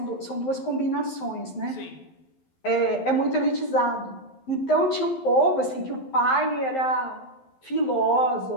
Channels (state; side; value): late; right; 11 ms